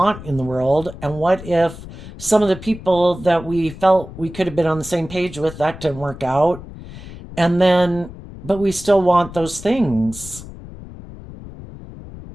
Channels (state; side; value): noise; left; rumble, 14 dB below the sound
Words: in the world. And what if some of the people that we felt we could have been on the same page with, that didn't work out? But we still want those things.